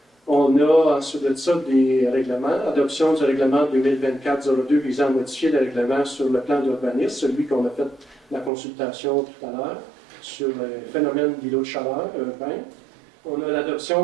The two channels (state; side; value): drops out; left; at 8.5 s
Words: On a ensuite de ça des règlements, adoption du règlement 2024-02 visant à modifier le règlement sur le plan d'urbanisme, celui qu'on a fait la consultation tout à l'heure sur le phénomène d'îlot de chaleur urbain. On a